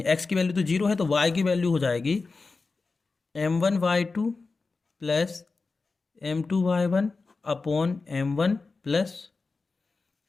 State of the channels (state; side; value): quieter; right; 4.1 dB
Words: x की वैल्यू तो 0 है, तो y की वैल्यू हो जाएगी m1 y2 plus m2 y1 upon m1 plus